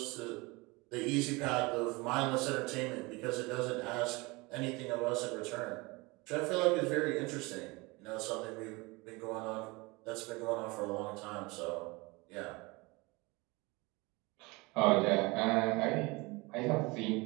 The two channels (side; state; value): left; quieter; 24.8 dB